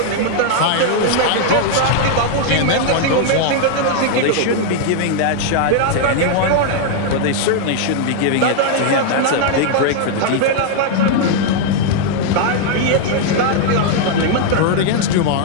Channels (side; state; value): both; different; correlation 0.00